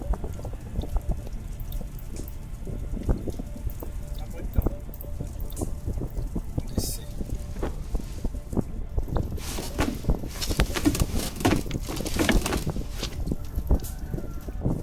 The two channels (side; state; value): both; identical; correlation 1.00